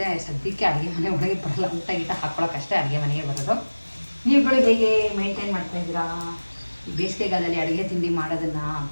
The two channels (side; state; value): both; inverted; correlation -1.00